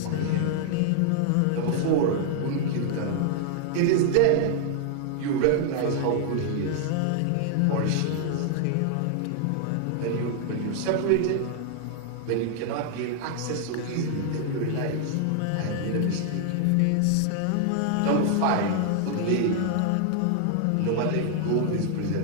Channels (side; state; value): both; different; correlation 0.00